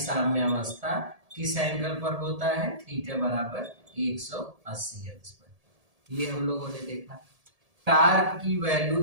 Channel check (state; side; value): late; left; 1.7 ms